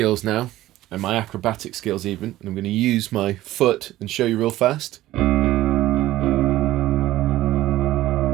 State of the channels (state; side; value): quieter; left; 15.4 dB